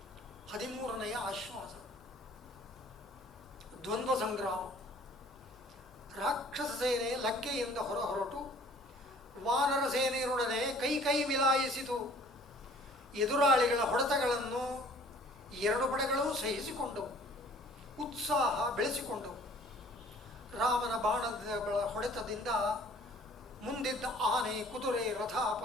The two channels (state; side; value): normal; both; correlation 0.53